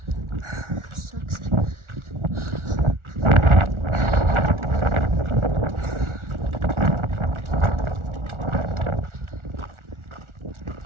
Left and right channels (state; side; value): late; left; 1.4 ms